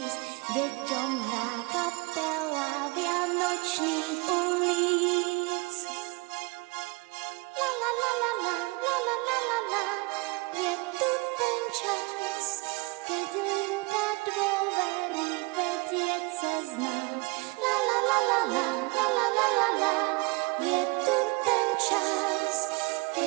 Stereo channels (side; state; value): left; quieter; 26.7 dB